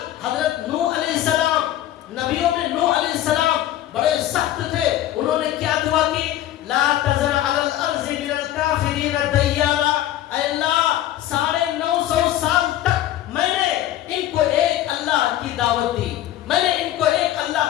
حضرت نوح علیہ السلام، نبیوں میں نوح علیہ السلام بڑے سخت تھے، انہوں نے کیا دعا کی، لا تذر علی الارض من الکافرین دیارا، اے اللہ 950 سال تک میں نے ان کو ایک اللہ کی دعوت دی، میں نے ان کو ایک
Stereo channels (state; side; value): quieter; right; 13.2 dB